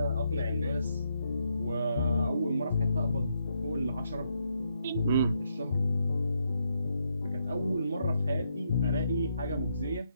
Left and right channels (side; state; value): both; inverted; correlation -0.78